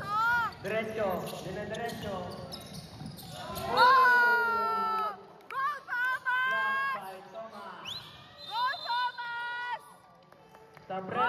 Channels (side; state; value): both; identical; correlation 1.00